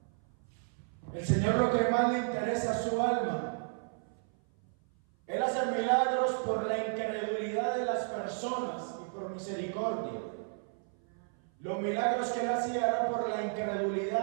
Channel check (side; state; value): left; silent; 55 dB below the other